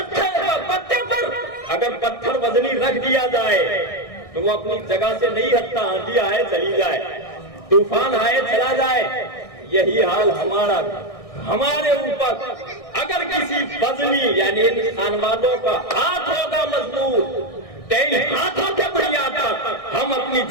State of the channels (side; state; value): right; late; 1.6 ms